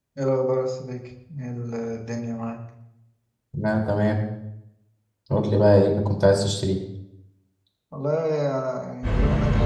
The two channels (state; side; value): identical; both; correlation 1.00